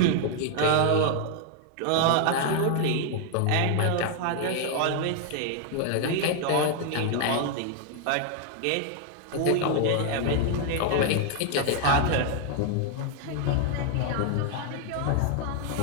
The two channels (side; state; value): both; different; correlation 0.00